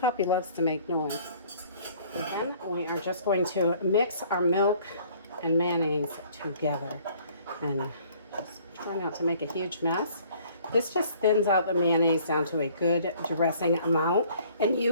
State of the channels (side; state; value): both; inverted; correlation -0.57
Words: loves to make noise. And then we are just going to mix our milk and mayonnaise together, and just try not to make a huge mess. This just thins out the mayonnaise down to a good dressing amount, and